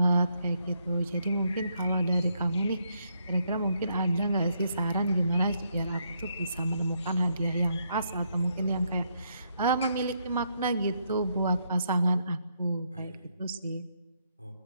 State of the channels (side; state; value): both; inverted; correlation -0.75